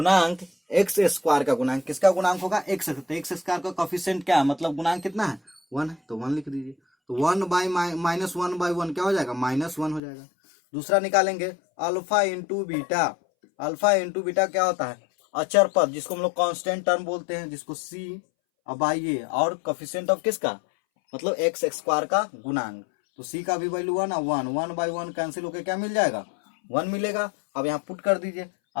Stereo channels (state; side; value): drops out; right; at 10.0 s